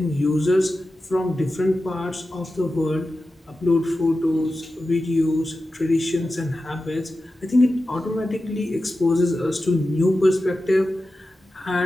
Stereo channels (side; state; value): both; normal; correlation 0.93